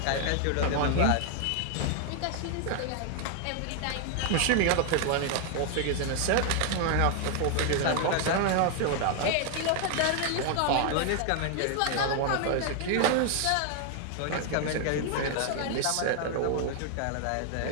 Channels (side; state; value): both; different; correlation 0.00